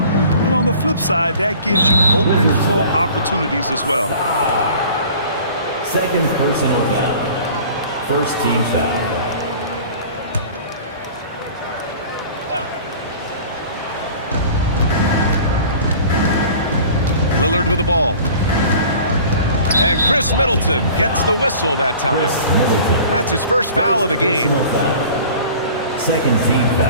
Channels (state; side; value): inverted; both; correlation -0.44